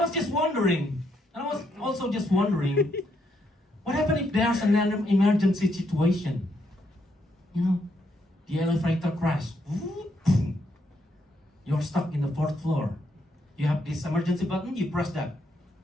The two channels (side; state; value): both; normal; correlation 0.76